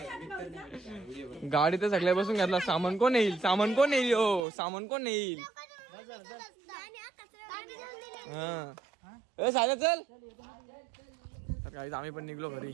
गाडी तर सगळ्या बसून घेतला. सामान कोण येईल हो सामान कोण येईल? सायला चल. तर गाईज आम्ही पण निघलो घरी.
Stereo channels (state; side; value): drops out; left; at 4.4 s